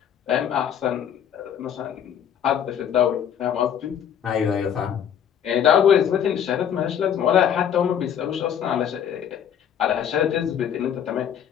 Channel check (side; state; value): right; quieter; 9.0 dB